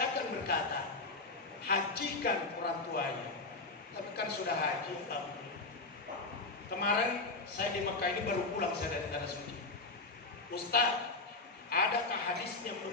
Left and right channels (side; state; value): right; quieter; 3.5 dB